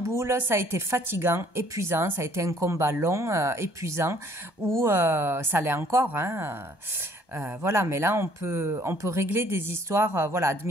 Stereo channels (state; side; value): late; right; 1.2 ms